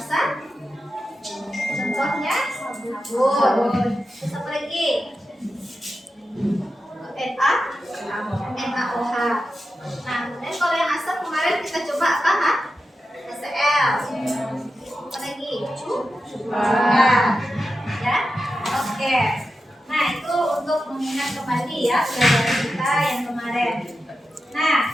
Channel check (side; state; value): both; normal; correlation 0.90